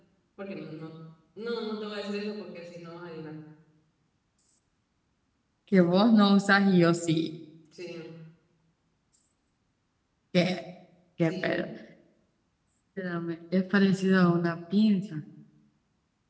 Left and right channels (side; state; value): both; identical; correlation 1.00